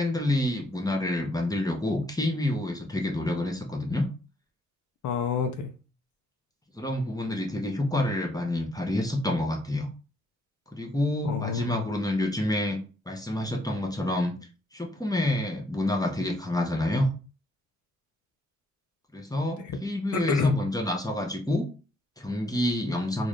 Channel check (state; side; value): normal; both; correlation 0.70